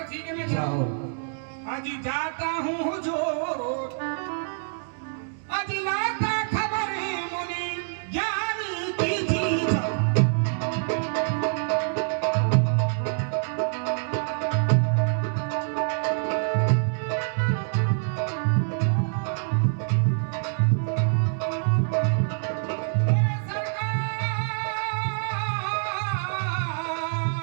ठीक है, मैं जाओ। अजी जाता हूँ हुजूर, अजी लाता खबर मुनि ज्ञानी की जीजा।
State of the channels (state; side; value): silent; left; digital silence